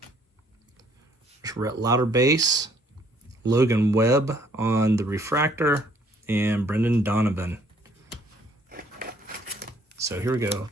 Rhett Lauder base, Logan Webb on the Refractor, and Brendan Donovan. So here we go.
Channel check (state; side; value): normal; both; correlation 0.63